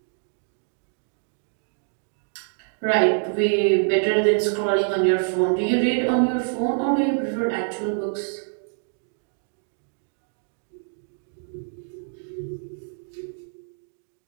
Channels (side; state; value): left; silent; digital silence